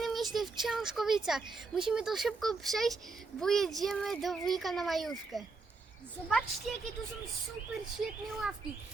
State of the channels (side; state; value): left; quieter; 4.0 dB